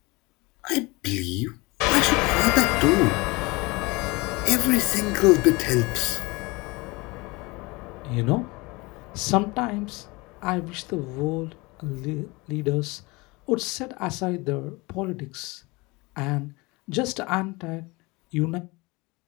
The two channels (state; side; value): quieter; right; 24.6 dB